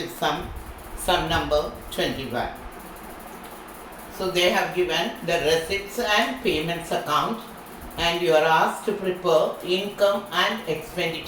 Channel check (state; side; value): identical; both; correlation 1.00